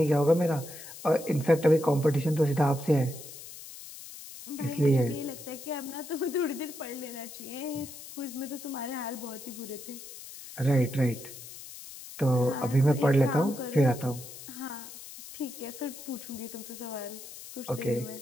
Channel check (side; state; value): left; noise; hiss, 14 dB below the sound